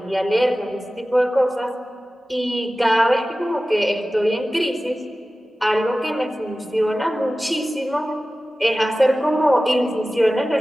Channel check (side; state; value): both; normal; correlation 0.96